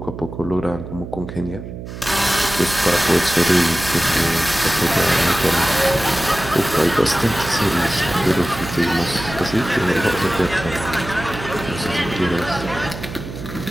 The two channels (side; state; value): right; noise; hum, 10 dB below the sound